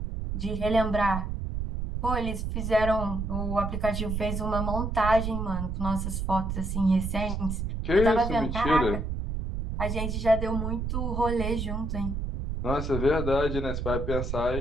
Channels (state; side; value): noise; right; rumble, 3 dB below the sound